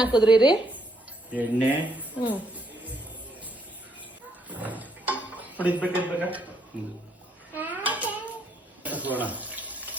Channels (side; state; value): both; normal; correlation 0.72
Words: ರೀ ಎಣ್ಣೆ ಹ್ಮ್ ಹೊಡಿಸ್ಬೇಕಾ ಹಸೋಣ